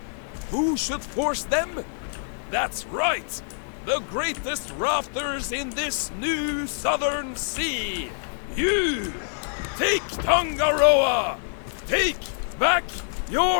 Who should force them? That's right! The greatest rafters in this new southern sea! You! Take Tangaroa! Take back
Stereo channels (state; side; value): silent; right; digital silence